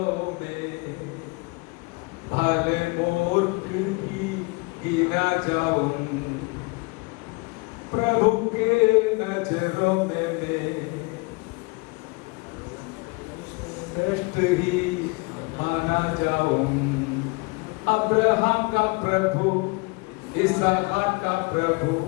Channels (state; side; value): quieter; right; 28.0 dB